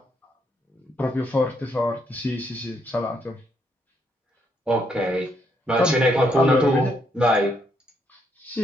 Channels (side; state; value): both; normal; correlation 0.74